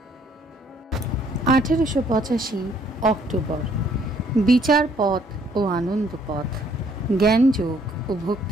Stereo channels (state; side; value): normal; both; correlation 0.64